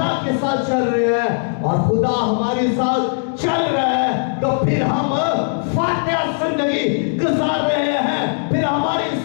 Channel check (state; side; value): silent; right; digital silence